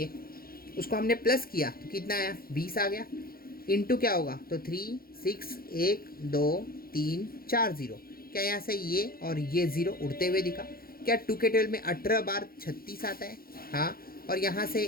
उसको हमने प्लस किया तो कितना आया 20 आ गया, इंटू क्या होगा, तो 3 6 1 2 3 4 0, क्या यहाँ से ये और ये 0 उड़ते हुए दिखा, क्या 2 के 12 में 18 बार 36 आता है, हाँ, और यहाँ से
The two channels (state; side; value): late; right; 0.43 ms